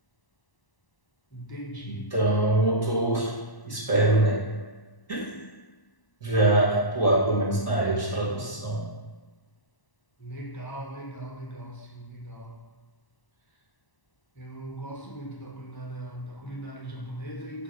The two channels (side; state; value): right; late; 1.0 ms